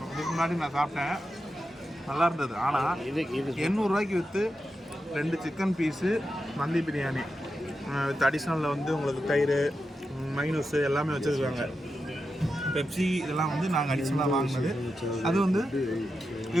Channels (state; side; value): normal; both; correlation 0.89